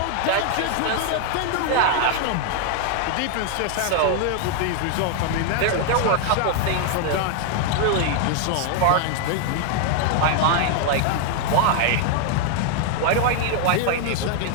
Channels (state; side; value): different; both; correlation 0.00